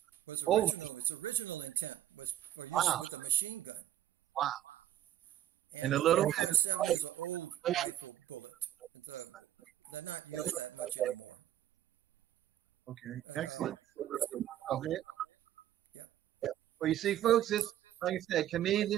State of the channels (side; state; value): left; quieter; 12.1 dB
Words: Oh, wow. Wow. And a little. Okay, excellent. Okay. Well, you see, folks, this, like I said, to me,